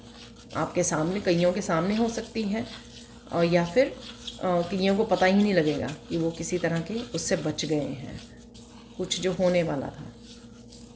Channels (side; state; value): both; identical; correlation 1.00